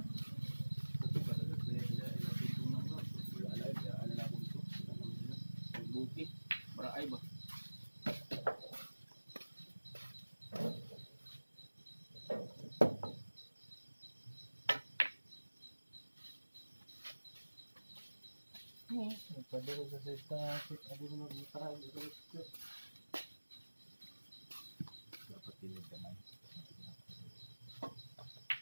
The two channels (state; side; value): inverted; both; correlation -1.00